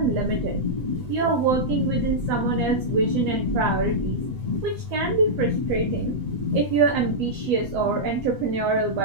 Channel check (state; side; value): late; left; 8.0 ms